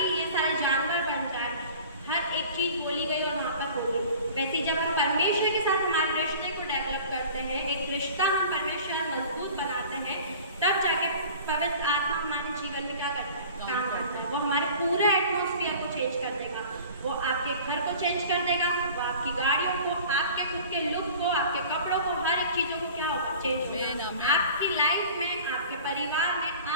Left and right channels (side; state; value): both; inverted; correlation -0.43